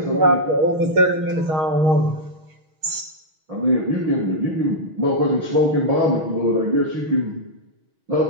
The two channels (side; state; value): left; late; 6.3 ms